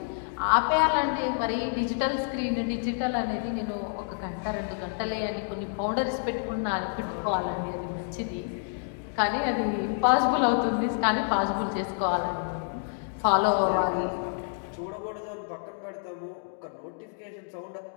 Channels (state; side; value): silent; right; digital silence